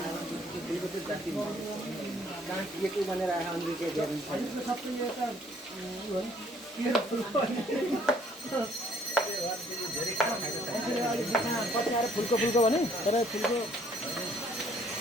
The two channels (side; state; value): both; normal; correlation 0.61